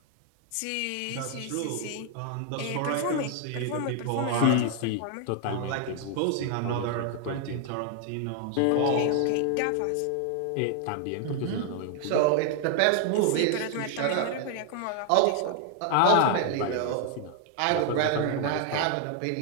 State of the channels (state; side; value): different; both; correlation 0.00